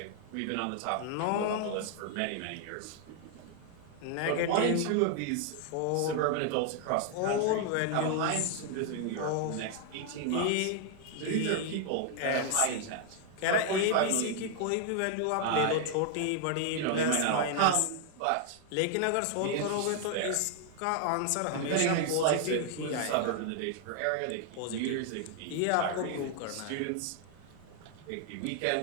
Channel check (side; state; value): both; different; correlation 0.00